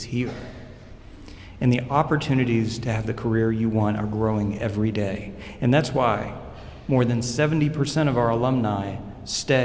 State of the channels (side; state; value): both; identical; correlation 1.00